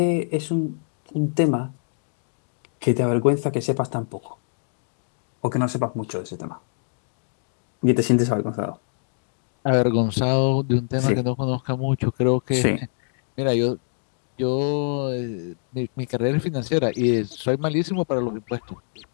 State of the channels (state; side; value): silent; right; digital silence